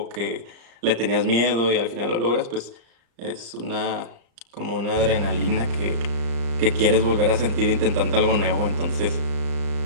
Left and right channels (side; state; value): left; late; 35 ms